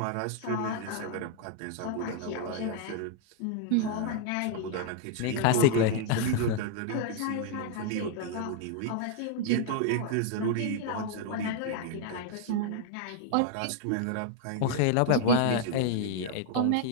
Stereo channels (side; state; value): both; different; correlation -0.01